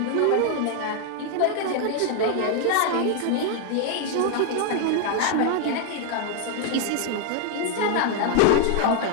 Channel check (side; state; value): both; different; correlation 0.01